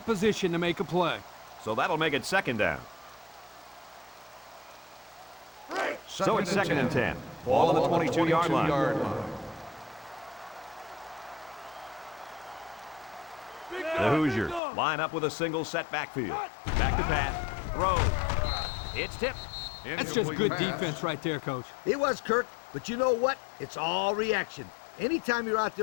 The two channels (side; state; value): right; drops out; at 14.6 s